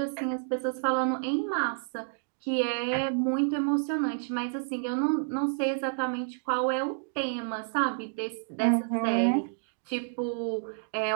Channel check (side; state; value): left; silent; digital silence